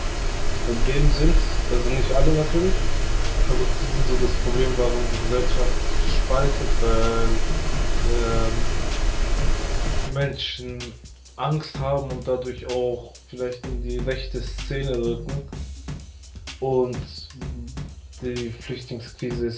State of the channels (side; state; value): both; identical; correlation 1.00